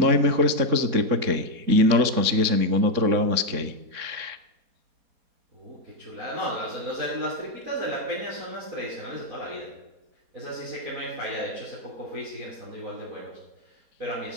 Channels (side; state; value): left; late; 4.2 ms